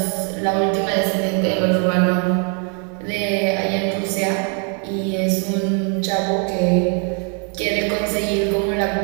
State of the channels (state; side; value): quieter; left; 39.7 dB